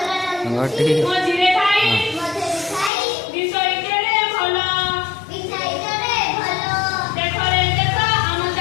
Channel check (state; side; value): drops out; right; at 2.9 s